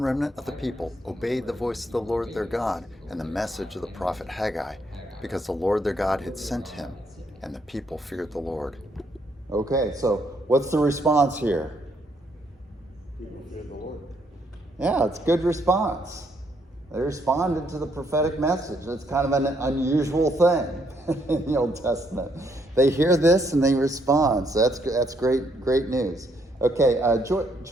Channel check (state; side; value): normal; both; correlation 0.72